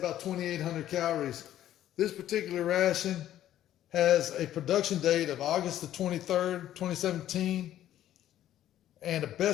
2,800 calories. This particular ration has a production date of August the 23rd, 2017, and a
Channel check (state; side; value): quieter; right; 12.3 dB